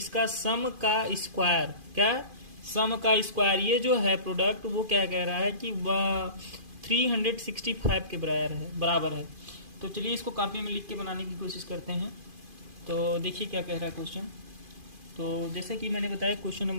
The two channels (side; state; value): left; late; 2.5 ms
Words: इसका सम का स्क्वायर। क्या? सम का स्क्वायर। ये जो है प्रोडक्ट, वो क्या कह रहा है कि 365 के बराबर है। तो चलिए इसको कॉपी में लिख के बनाने की कोशिश करते हैं। तो देखिए क्या कह रहा है क्वेश्चन। तो जैसे कि मैंने बताया क्वेश्चन